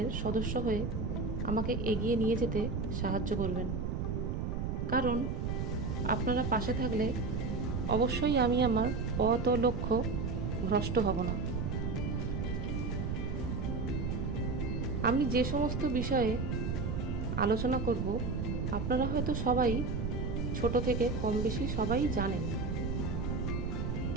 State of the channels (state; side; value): noise; right; rumble, 1 dB below the sound